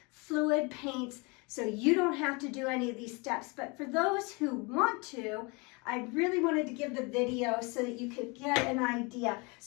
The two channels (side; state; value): right; quieter; 28.9 dB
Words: fluid paints, so you don't have to do any of these steps. But for those who want to, I really wanted to give the video so that you could get an idea.